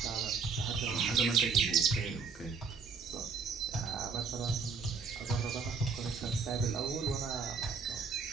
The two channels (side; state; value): left; quieter; 5.3 dB